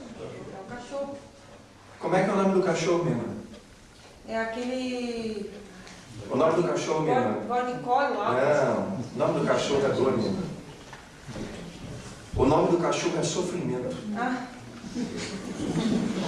o cachorro. Como é que é o nome do cachorro, minha irmã? É aquele... O nome do cachorro, minha irmã? Bornicole lá. Não, o nome do cachorro é dor, minha irmã. O nome do cachorro é sofrimento. Ah.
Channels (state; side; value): identical; both; correlation 1.00